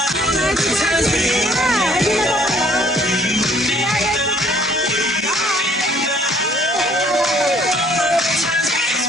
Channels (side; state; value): both; normal; correlation 0.59